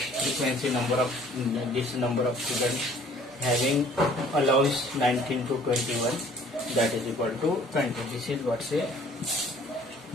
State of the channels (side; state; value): both; normal; correlation 0.54